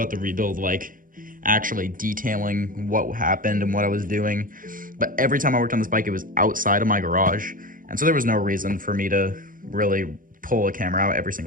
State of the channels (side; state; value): left; late; 0.40 ms